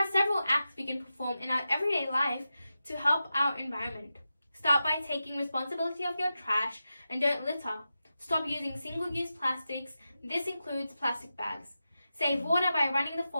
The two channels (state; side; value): inverted; both; correlation -0.91